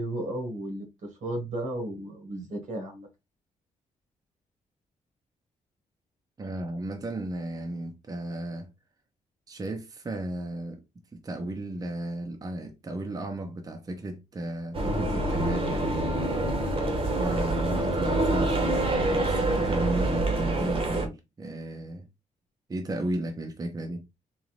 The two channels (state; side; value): normal; both; correlation 0.67